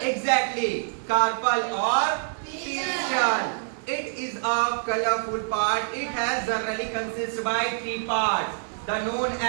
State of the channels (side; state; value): left; silent; digital silence